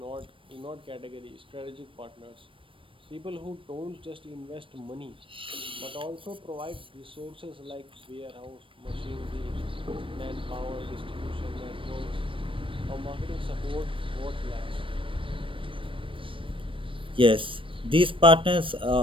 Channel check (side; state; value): left; late; 0.25 ms